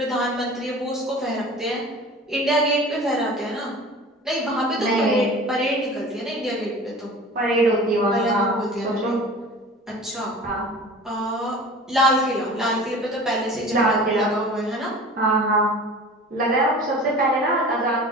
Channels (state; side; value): normal; both; correlation 0.40